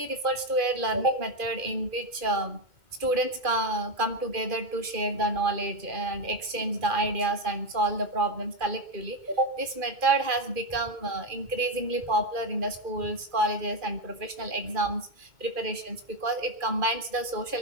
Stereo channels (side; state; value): left; late; 2.4 ms